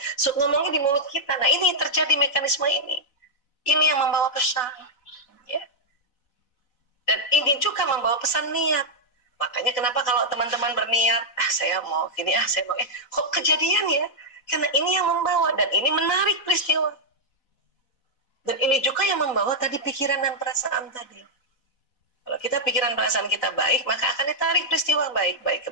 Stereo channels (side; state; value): right; late; 4.0 ms